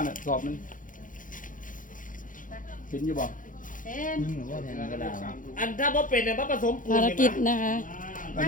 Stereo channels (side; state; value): right; late; 0.39 ms